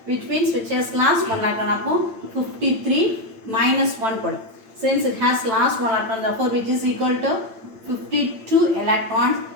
which means which has lost 1 electron. 53 minus 1. Since it has lost 1 electron, therefore which is equal to 52 electrons,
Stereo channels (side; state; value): left; late; 8.8 ms